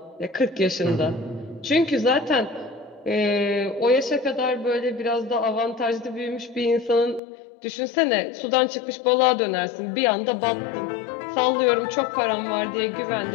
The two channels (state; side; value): drops out; right; at 7.2 s